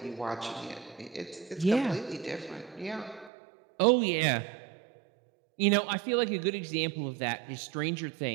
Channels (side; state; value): left; drops out; at 3.3 s